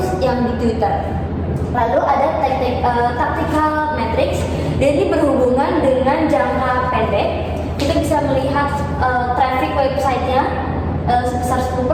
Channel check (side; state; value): both; identical; correlation 1.00